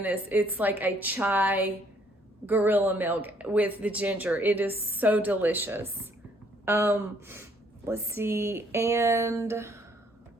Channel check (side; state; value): both; normal; correlation 0.65